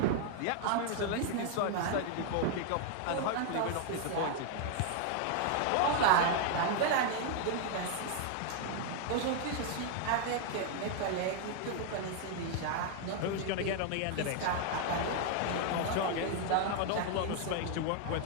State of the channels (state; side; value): different; both; correlation 0.00